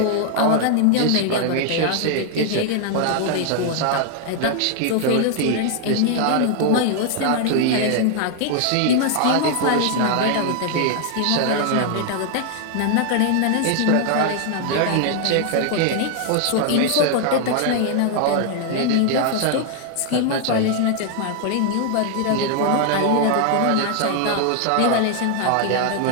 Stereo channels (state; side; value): different; both; correlation 0.00